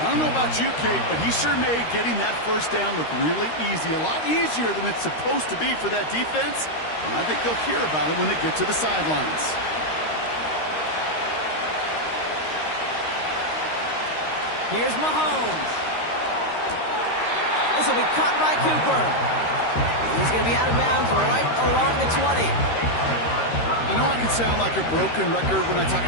don't know about you, Kate, but he sure made getting that first down look really easy. A lot easier than it's supposed to be for that defense. And I think they'll hear about it when they get to the sidelines. Here's Mahomes. This will be caught by Cooper. He's going to be out of bounds right along the 20. I know I can sound like a broken record when I talk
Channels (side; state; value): right; late; 13 ms